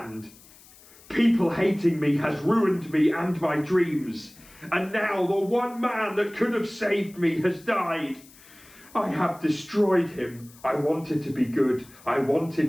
People hating me has ruined me and my dreams, and now the one man that could have saved me has died. I have destroyed him. I wanted to be good, I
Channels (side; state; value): left; noise; hiss, 24 dB below the sound